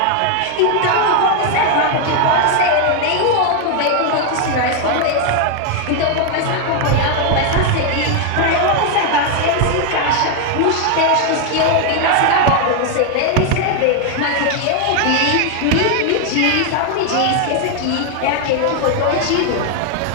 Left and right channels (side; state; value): both; different; correlation 0.01